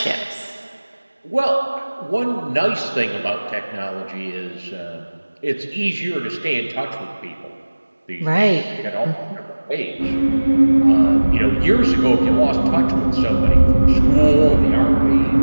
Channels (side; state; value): both; inverted; correlation -1.00